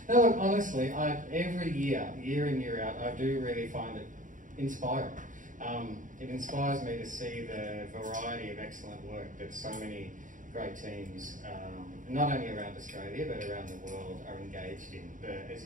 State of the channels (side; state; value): left; late; 0.38 ms